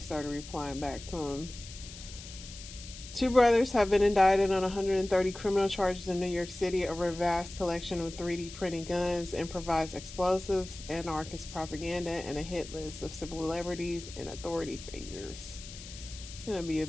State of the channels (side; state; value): left; noise; hiss, 14 dB below the sound